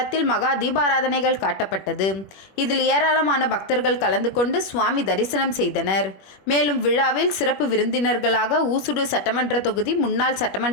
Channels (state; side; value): late; right; 21 ms